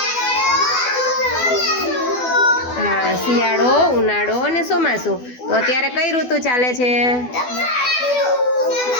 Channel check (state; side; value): late; right; 12 ms